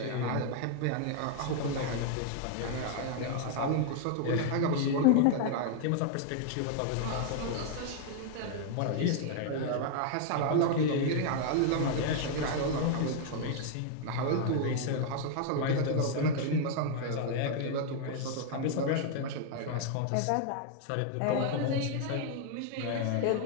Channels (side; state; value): both; different; correlation 0.00